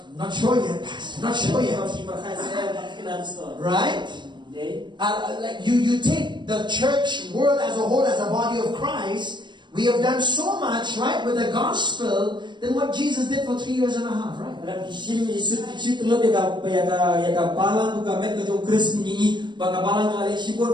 not sure yet, Pastor. Not sure yet. Right? Like you take the church world as a whole, as a body of Christ. We have done so much, right, with the gospel than what Jesus did for 3 years and a half, right?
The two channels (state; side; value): late; left; 0.22 ms